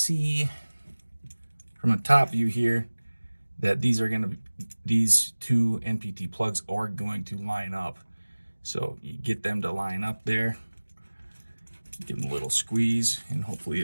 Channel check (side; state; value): both; inverted; correlation -1.00